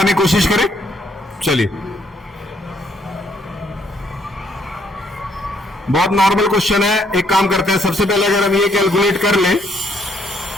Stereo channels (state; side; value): normal; both; correlation 0.69